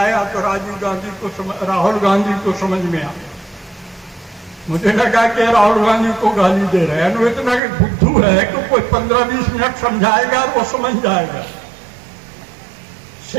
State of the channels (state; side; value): drops out; left; at 7.6 s